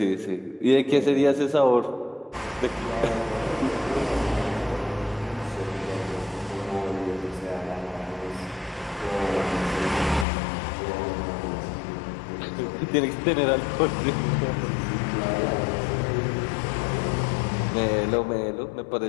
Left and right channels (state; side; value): drops out; right; at 10.2 s